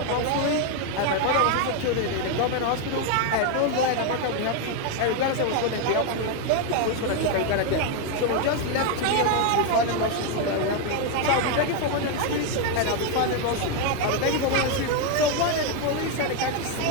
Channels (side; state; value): both; different; correlation 0.01